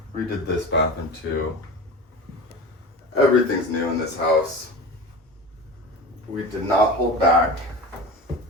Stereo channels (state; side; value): normal; both; correlation 0.31